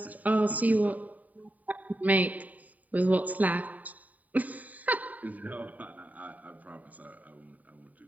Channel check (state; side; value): late; left; 0.074 ms